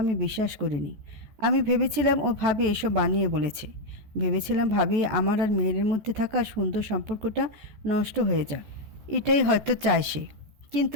আমি বিশ্বাস করিনি। আমি ভেবেছিলাম ও ভাবি এসব বানিয়ে বলেছে। ভেবেছিলাম ভাবি আমার আর মেহেরের মধ্যে থাকা সুন্দর সম্পর্কটা নষ্ট হয়ে যাক, এটাই হয়তো চায় সে।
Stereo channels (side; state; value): left; late; 14 ms